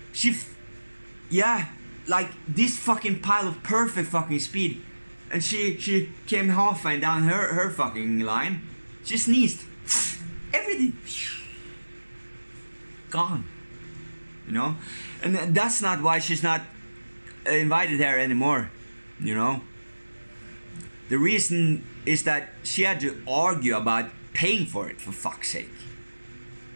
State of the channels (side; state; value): both; inverted; correlation -1.00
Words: yeah, like this fucking pile of perfect fucking speed, and she came halfway down her fucking line, she sneezed, everything gone. You know, and that's not why she's not invited here anymore. You know, the reason is that she had to argue about paying for it, for fuck's sake.